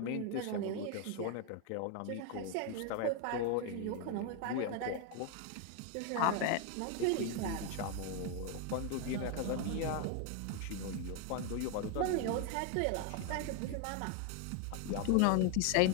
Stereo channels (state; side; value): different; both; correlation 0.01